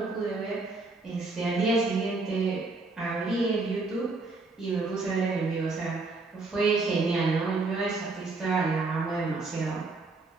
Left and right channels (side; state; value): left; quieter; 3.6 dB